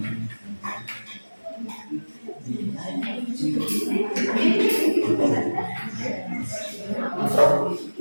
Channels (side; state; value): both; inverted; correlation -1.00